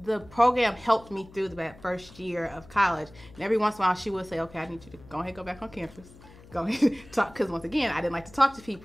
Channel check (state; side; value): noise; left; hum, 22 dB below the sound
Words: the program helped me through that first year of college. And every once in a while, she would say, okay, I need you to go ahead and go back on campus. Go ahead and talk. Because once again, I didn't like to talk to